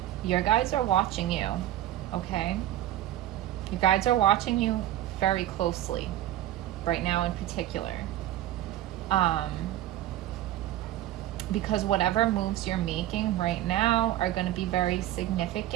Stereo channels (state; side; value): quieter; left; 13.6 dB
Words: your guides are watching you, okay? Your guides are watching you very closely right now in particular. Because whatever moves you're making right now are going to be very